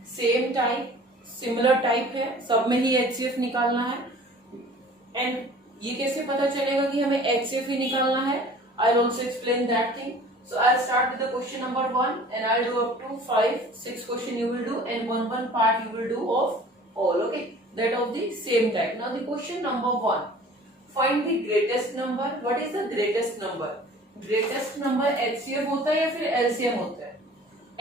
same type, similar type है, सब में ही HCF निकालना है. And ये कैसे पता चलेगा कि हमें HCF ही निकालना है? I'll also explain that thing. So I'll start with the question number 1 and I'll do up to 5-6 question you will do and one part you will do of all. Okay, that of the same type. Now the question number 1. Find the greatest number. What is the greatest number? Greatest number HCF होता है या फिर LCM होता है?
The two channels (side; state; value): both; normal; correlation 0.47